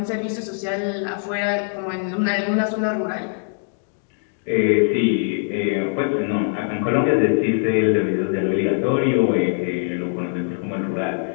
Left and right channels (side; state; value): right; silent; 64 dB below the other